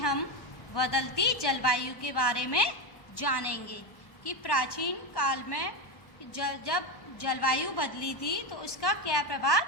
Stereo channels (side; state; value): right; late; 1.1 ms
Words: बदलती जलवायु के बारे में जानेंगे कि प्राचीन काल में जब जलवायु बदली थी तो उसका क्या प्रभाव